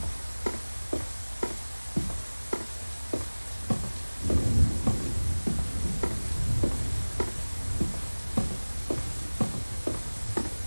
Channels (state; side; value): inverted; both; correlation -1.00